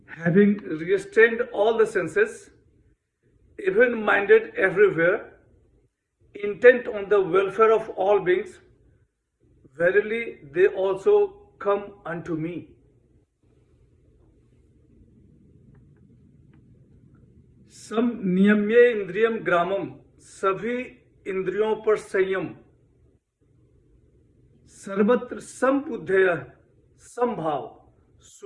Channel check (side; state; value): both; identical; correlation 1.00